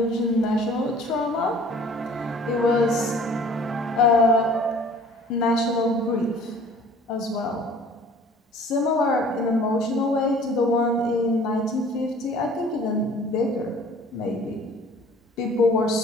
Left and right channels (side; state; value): both; normal; correlation 0.50